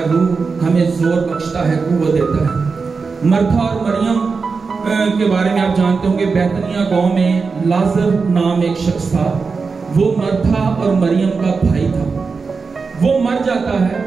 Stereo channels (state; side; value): quieter; left; 4.8 dB